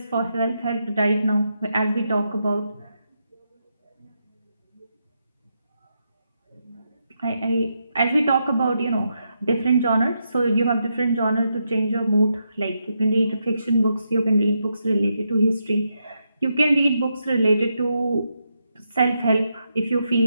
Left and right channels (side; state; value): both; inverted; correlation -0.83